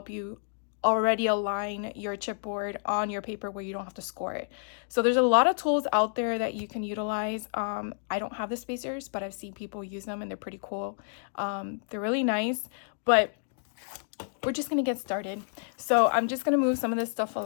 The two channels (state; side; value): silent; right; digital silence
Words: you already align your chipboard on your paper where you don't have to score it. So there's a lot of tools out there that you can utilize. I don't have the spacers, but I've seen people use them and they're pretty cool. They're really nice, but we're just gonna get started. So I'm just gonna move some of this stuff